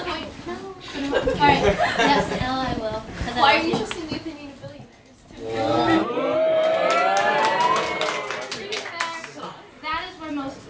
point? No. Alright, yes, L I will. Why are you just in the opinion of billionaires? That is where most,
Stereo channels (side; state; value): both; identical; correlation 1.00